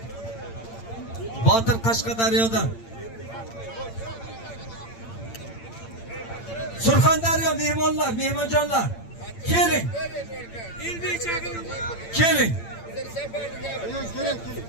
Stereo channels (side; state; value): right; late; 8.8 ms